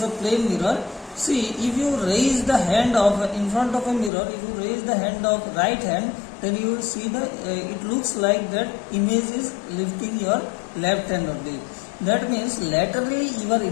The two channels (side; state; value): right; drops out; at 4.1 s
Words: of plane mirror. See, if you raise the hand of in front of a mirror, if you raise the hand of right hand, then you will see the it looks like that image is lifting your left hand only. That means laterally you are